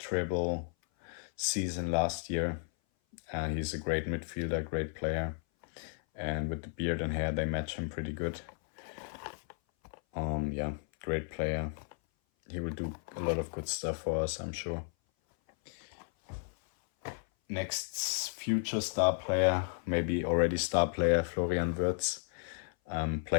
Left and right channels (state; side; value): silent; right; 55 dB below the other